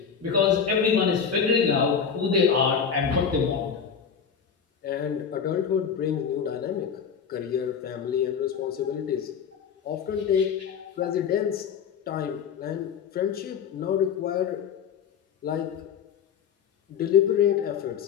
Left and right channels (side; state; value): right; quieter; 7.0 dB